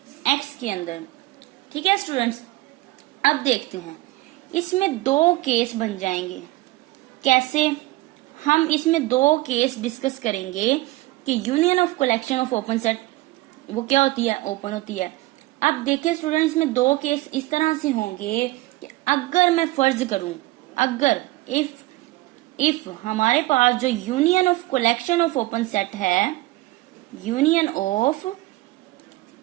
एक्स के अंदर। ठीक है स्टूडेंट्स, अब देखते हैं, इसमें दो केस बन जाएंगे। कैसे? हम इसमें दो केस डिस्कस करेंगे कि union of collection of open set वो क्या होती है, ओपन होती है। अब देखिए स्टूडेंट्स, में दो केस इस तरह से होंगे कि अगर मैं फर्ज करूं, अगर इफ हमारे पास जो union of collection of open set है, union of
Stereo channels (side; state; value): left; quieter; 19.3 dB